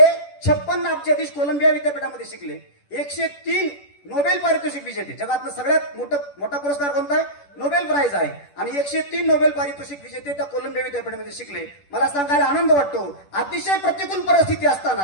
56 अब्जाधीश कोलंबिया विद्यापीठामध्ये शिकले. 103 नोबेल पारितोषिक विजेते, जगातलं सगळ्यात मोठा पुरस्कार कोणता आहे, नोबेल प्राइज आहे, आणि 103 नोबेल पारितोषिक विजेते त्या कोलंबिया विद्यापीठामध्ये शिकले. मला सांगायला आनंद वाटतो, अतिशय प्रतिकूल परिस्थिती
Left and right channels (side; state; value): right; late; 10 ms